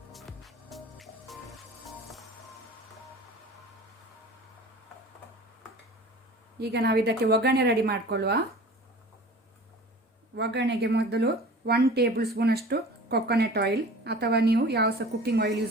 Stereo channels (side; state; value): both; normal; correlation 0.41